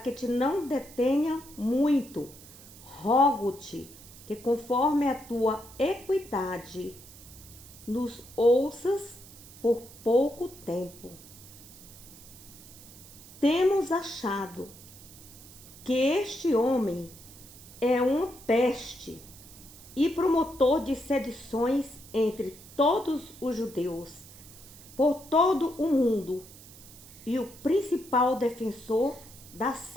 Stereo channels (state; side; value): noise; right; hiss, 19 dB below the sound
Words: te não detenha muito, rogo-te que, conforme a tua equidade, nos ouças por pouco tempo. Temos achado que este homem é uma peste e promotor de sedições entre todos os judeus, por todo o mundo, e o principal defensor da